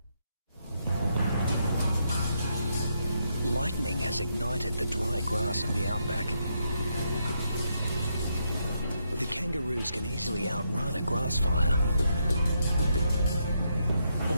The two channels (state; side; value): inverted; both; correlation -0.79